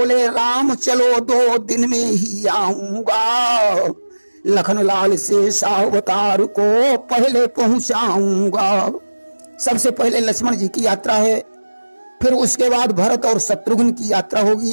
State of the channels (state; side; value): inverted; both; correlation -1.00